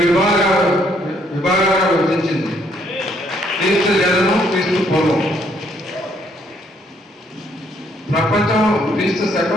విభాగాలుగా విభజించింది. క్రీస్తు జననం, క్రీస్తు పూర్వం. ప్రపంచం క్రీస్తు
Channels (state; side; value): normal; both; correlation 0.68